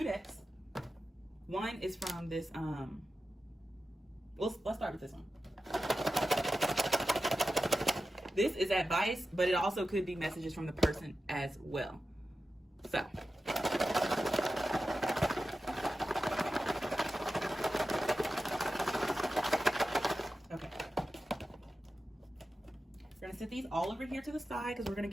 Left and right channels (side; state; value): both; normal; correlation 0.93